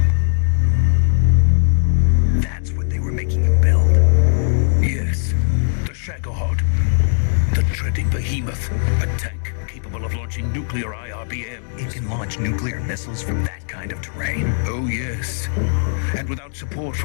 That's what they were making you build. Yes. The Shagohod. The dreading behemoth. A tank capable of launching nuclear IRBM. It can launch nuclear missiles from that kind of terrain. Oh, yes. And without support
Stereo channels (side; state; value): right; silent; digital silence